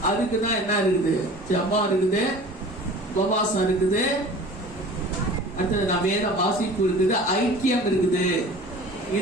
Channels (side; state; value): both; normal; correlation 0.42